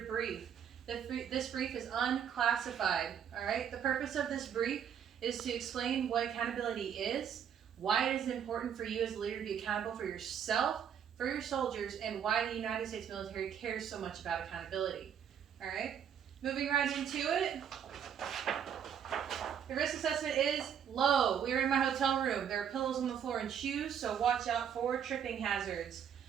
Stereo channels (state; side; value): quieter; left; 8.4 dB